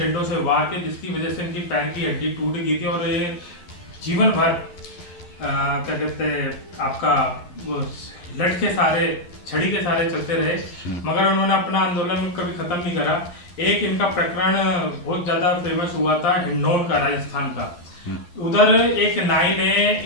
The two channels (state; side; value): late; right; 11 ms